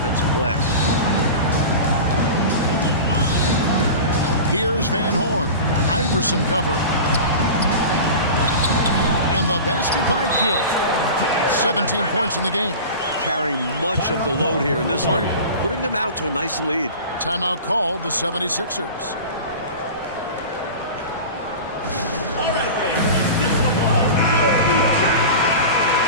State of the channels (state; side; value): inverted; both; correlation -0.33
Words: glass. Here's Van Horn. Iverson covering. And the basket by Kidd. 17 points in the game. Carrying much of the load here in this one. Putting them out to a nice lead. Timeout called the 76ers.